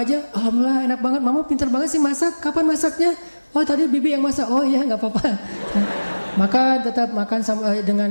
aja, alhamdulillah enak banget. Mama pintar banget sih masak. Kapan masaknya? Oh tadi bibi yang masak. Oh iya gak apa-apa. Maka tetap makan dengan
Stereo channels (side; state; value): both; inverted; correlation -1.00